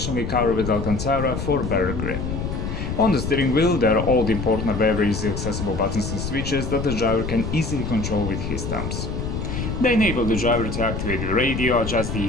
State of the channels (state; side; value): noise; left; rumble, 4 dB below the sound